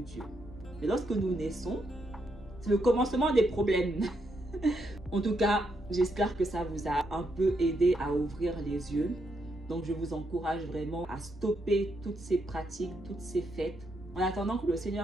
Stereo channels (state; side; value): normal; both; correlation 0.79